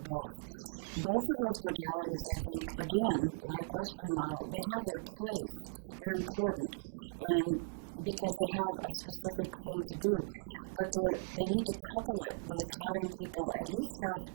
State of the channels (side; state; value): left; silent; digital silence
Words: Both of those modalities, I think, again, like Western model, they have their place. They're important, and because they have a specific thing to do. But they need to couple it with having people at least have